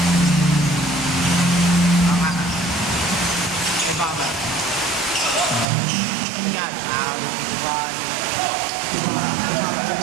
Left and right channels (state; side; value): drops out; left; at 5.7 s